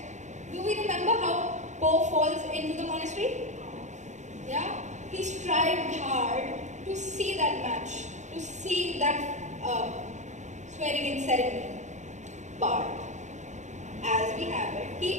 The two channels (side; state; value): left; late; 0.34 ms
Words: Do we remember how Po falls into the monastery? Yeah? He strived hard to see that match, to see that swearing in ceremony. But as we have it,